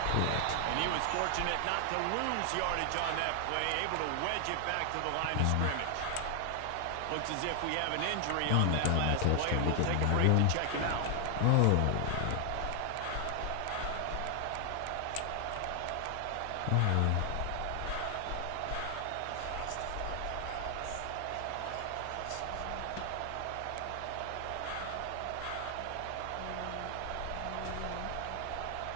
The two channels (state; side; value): different; both; correlation 0.00